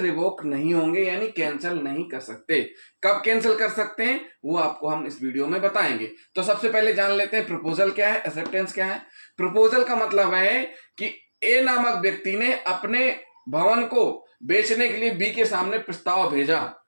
नहीं होंगे, यानी कैंसिल नहीं कर सकते। कब कैंसिल कर सकते हैं वो आपको हम इस वीडियो में बताएंगे। तो सबसे पहले जान लेते हैं प्रपोजल क्या है, एक्सेप्टेंस क्या है। प्रपोजल का मतलब है कि ए नामक व्यक्ति ने अपने भवन को बेचने के लिए बी के सामने प्रस्ताव भेजा,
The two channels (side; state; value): both; inverted; correlation -1.00